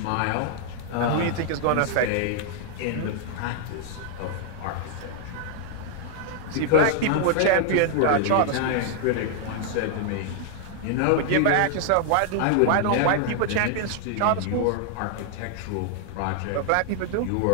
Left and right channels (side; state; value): both; different; correlation 0.00